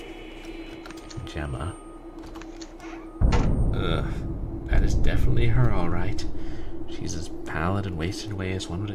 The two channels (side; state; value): both; identical; correlation 1.00